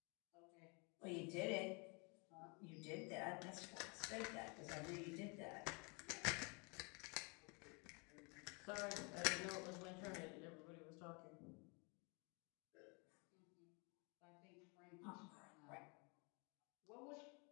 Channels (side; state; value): right; quieter; 32.3 dB